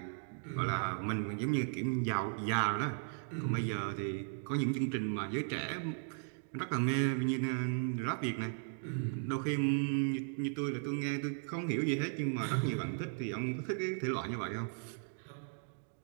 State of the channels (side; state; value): left; silent; digital silence